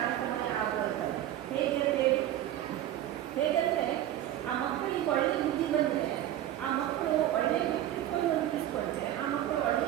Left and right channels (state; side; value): quieter; left; 12.6 dB